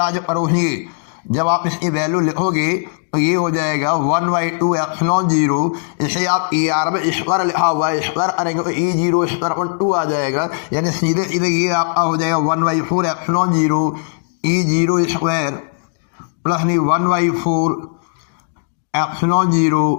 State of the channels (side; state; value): right; silent; digital silence